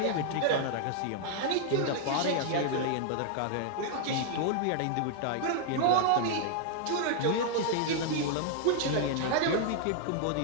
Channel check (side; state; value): both; different; correlation -0.01